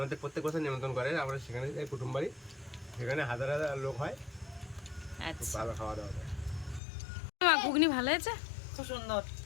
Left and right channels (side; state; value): right; drops out; at 6.8 s